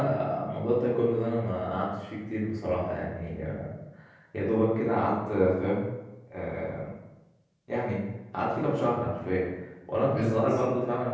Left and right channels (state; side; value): identical; both; correlation 1.00